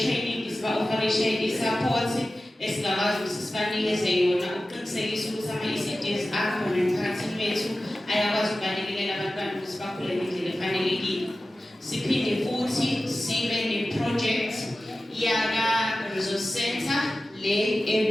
siba-oferisha i-support esingakwazi ukuthi sibanikeze yona ukuqinisekisa ukuthi ama-ECDs akhona emphakathini wethu ayakwazi ukubalekelela abantwana ukuthi bakhule ngendlela efanelekile. Siphinde futhi sibe ne-project yaka-resource center le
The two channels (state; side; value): normal; both; correlation 0.95